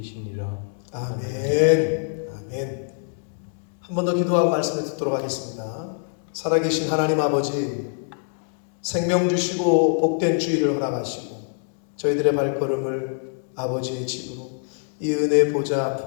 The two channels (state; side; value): silent; right; digital silence